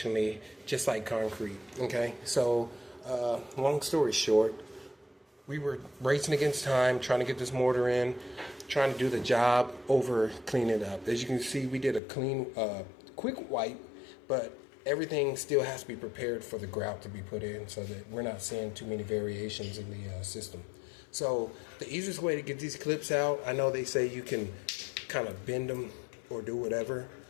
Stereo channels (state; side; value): drops out; right; at 12.0 s